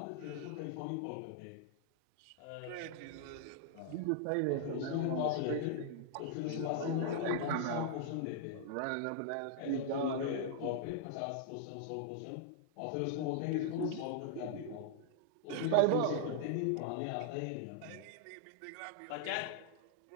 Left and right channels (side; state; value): both; different; correlation -0.01